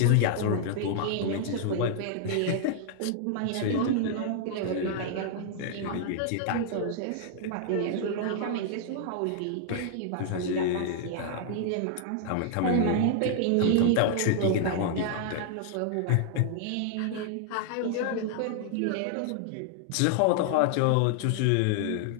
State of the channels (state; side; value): different; both; correlation -0.01